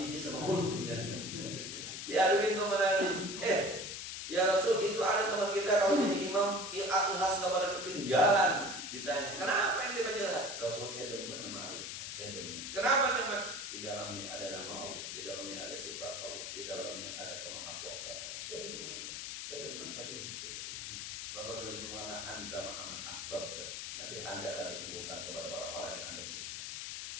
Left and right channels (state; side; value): noise; left; hiss, 6 dB below the sound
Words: ini sama Qul ya. Diaduin teman Nabi, ya Rasul itu ada teman kita kalau jadi imam Al-Ikhlas gak pada ketinggalan. Ditanya, kenapa yang baca Al-Ikhlas? Rasul saya demen sama Al-Ikhlas, saya demen. Kenapa demen? Di dalamnya ada nama Allah, di dalamnya ada sifat Allah, di dalamnya ada kemahakuasaan Allah. Saya demen pada ini. Rasul saya berkata, anta ma'aman ahbabta. Nanti anda akan dikumpulkan kepada orang-orang yang anda cinta.